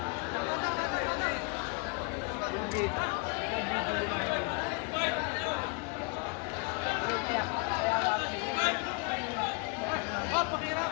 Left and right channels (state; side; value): quieter; right; 32.6 dB